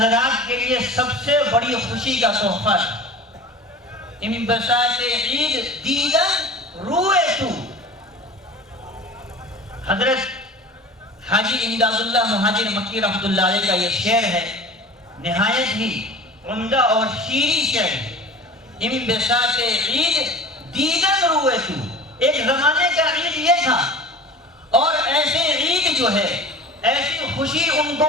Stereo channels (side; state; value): both; normal; correlation 0.38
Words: کے لیے سب سے بڑی خوشی کا تحفہ تھا۔ انبساط عید دیدن روئے تو، حضرت حاجی امداد اللہ مہاجر مکی رحمۃ اللہ علیہ کا یہ شعر ہے، نہایت ہی عمدہ اور شیریں شعر ہے۔ انبساط عید دیدن روئے تو ایک زمانے کا عید یہ تھا، اور ایسے عید جو ہے، ایسی خوشی ان